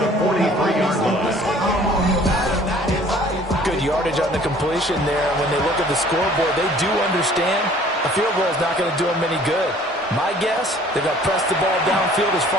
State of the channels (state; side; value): normal; both; correlation 0.53